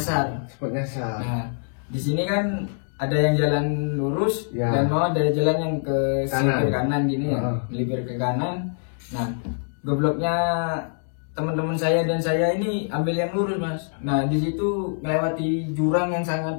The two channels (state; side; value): silent; right; digital silence